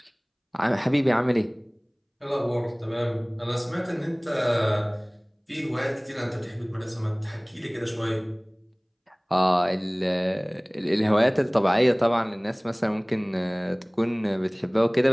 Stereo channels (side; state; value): both; identical; correlation 1.00